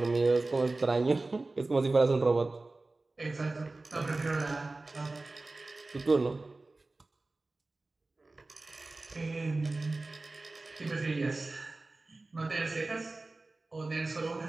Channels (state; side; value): quieter; left; 3.2 dB